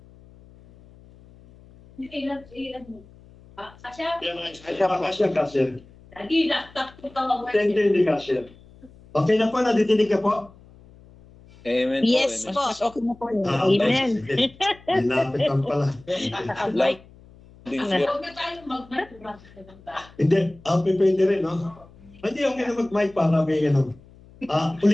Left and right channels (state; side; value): noise; left; hum, 24 dB below the sound